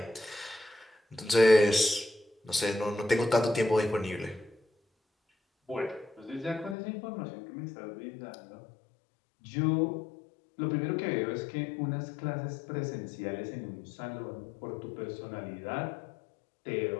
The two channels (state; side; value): drops out; right; at 6.8 s